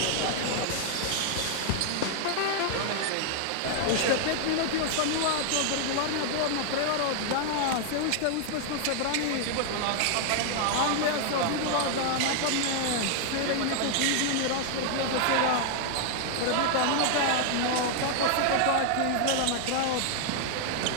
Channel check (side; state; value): both; different; correlation 0.00